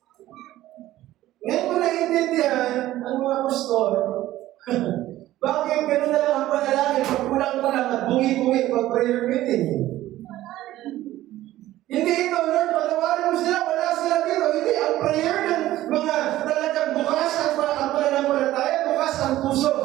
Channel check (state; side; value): quieter; left; 15.0 dB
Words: Ngayon ko naiintindihan ang mga pastor. Bakit ganun na lang ang panalangin pag kulang-kulang at bungi-bungi pag prayer meeting? Hindi ito, Lord, patawarin mo sila, wala sila dito. Hindi, ang prayer ng mga talagang bukas ang pananampalataya, bukas puso,